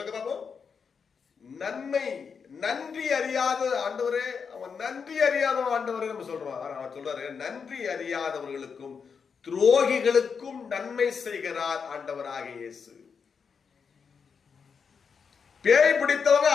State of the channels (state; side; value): quieter; right; 6.1 dB